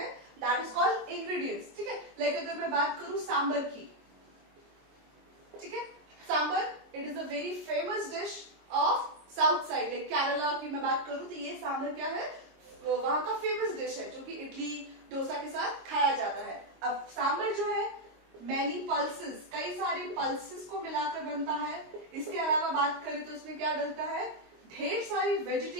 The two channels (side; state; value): left; late; 22 ms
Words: दैट इज कॉल्ड इंग्रेडिएंट्स। ठीक है, लाइक अगर मैं बात करूं सांबर की, ठीक है, sambar it is a very famous dish of south side, like Kerala की मैं बात करूं तो ये सांबर क्या है, वहां का फेमस डिश है जो कि इडली डोसा के साथ खाया जाता है। अब सांबर जो है मैनी पल्सेस, कई सारे पल्सेस को मिलाकर बनता है। इसके अलावा बात करें तो इसमें क्या डलता है, ढेर सारी